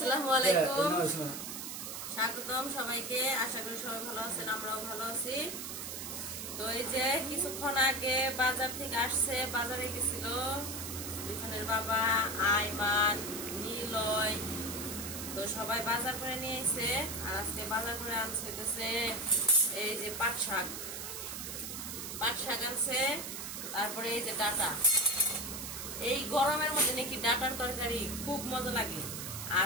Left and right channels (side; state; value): right; noise; hiss, 7 dB below the sound